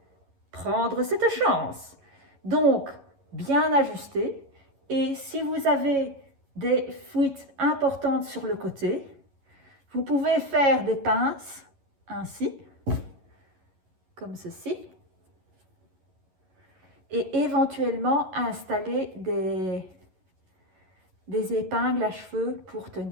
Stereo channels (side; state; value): left; late; 11 ms